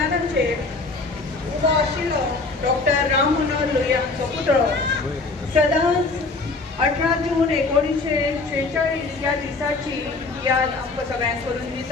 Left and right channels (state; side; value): quieter; right; 3.7 dB